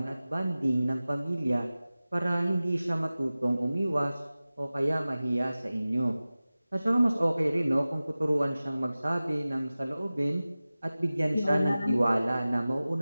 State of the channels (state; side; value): inverted; both; correlation -0.97